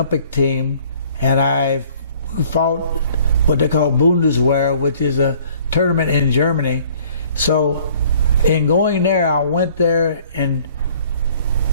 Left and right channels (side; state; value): both; inverted; correlation -0.56